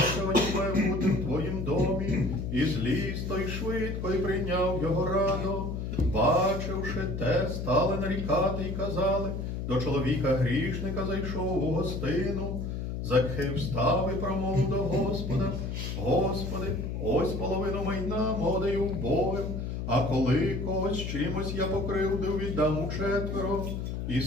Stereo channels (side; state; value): left; noise; hum, 4 dB below the sound